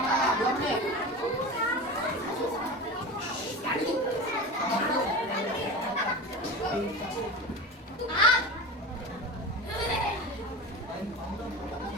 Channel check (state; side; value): normal; both; correlation 0.28